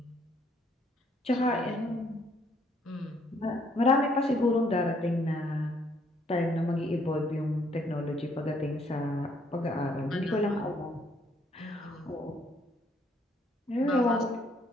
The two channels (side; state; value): both; normal; correlation 0.67